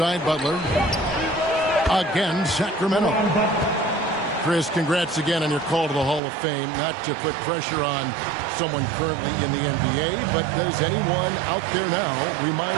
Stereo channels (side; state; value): left; drops out; at 6.2 s